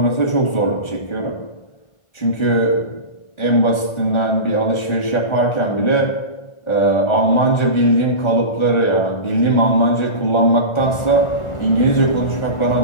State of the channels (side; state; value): right; late; 1.3 ms